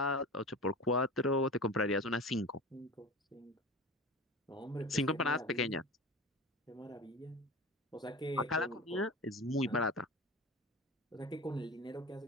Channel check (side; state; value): both; normal; correlation 0.32